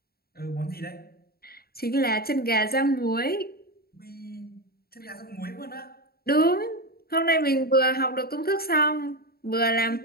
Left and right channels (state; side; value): late; right; 0.45 ms